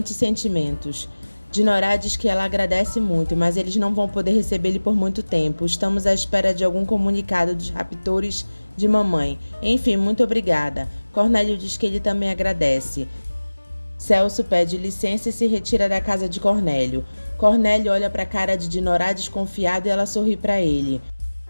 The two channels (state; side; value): inverted; both; correlation -1.00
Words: sentimentos. Dinorá diz que ela agradece muito, mas eles não vão poder recebê-lo por muito tempo. Estamos à espera de algum comunicado dos raptores de mamãe. Enfim, muito obrigada. Cornélio diz que ele também agradece. Celso pede licença e se retira da casa de Cornélio. Cornélio olha para a cara de Dinorá desconfiado e ela sorri para ele.